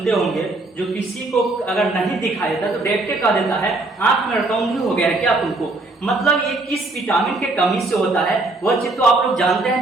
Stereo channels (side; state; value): left; quieter; 3.0 dB